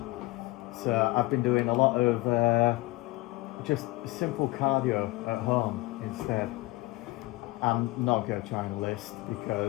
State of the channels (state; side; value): quieter; right; 20.0 dB